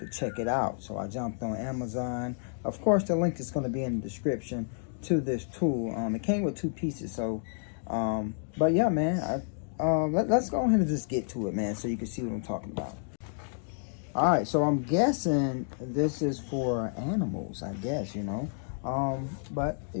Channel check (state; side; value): silent; right; digital silence